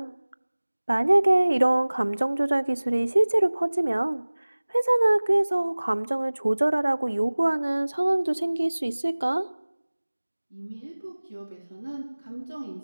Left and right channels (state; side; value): inverted; both; correlation -1.00